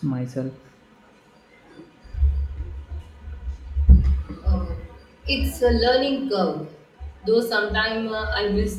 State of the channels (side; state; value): both; identical; correlation 1.00